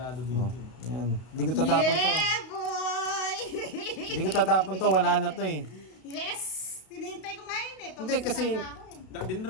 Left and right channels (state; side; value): late; right; 32 ms